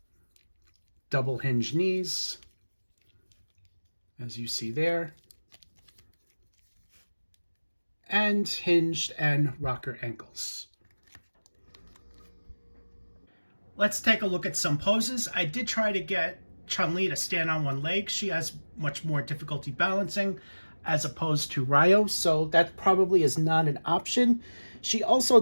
double-hinged knees, as you see there, and hinged and rocker ankles. Let's take a look at some poses. I did try to get Chun-Li to stand on one leg. She has much more difficulty balancing as opposed to Ryo, so that probably is not an option. She also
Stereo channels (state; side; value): inverted; both; correlation -1.00